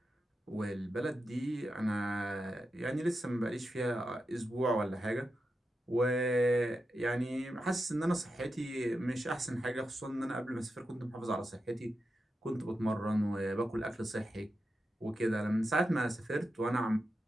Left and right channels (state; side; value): normal; both; correlation 0.88